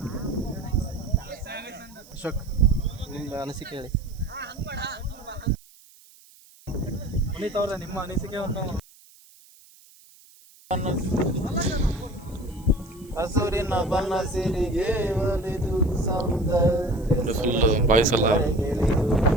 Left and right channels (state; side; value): noise; right; hiss, 26 dB below the sound